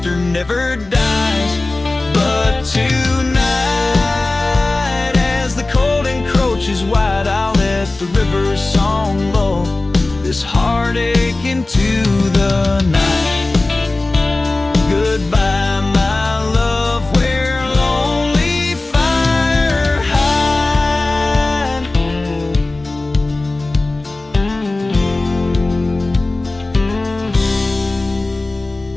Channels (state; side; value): quieter; right; 3.1 dB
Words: never dies. But tonight, as the cold encroaches wide, I'll let the river's song lull this heartache into the night. Goodbye, my love, where lonely fire hide.